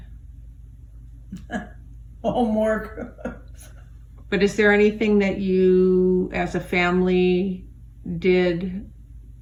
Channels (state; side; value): identical; both; correlation 1.00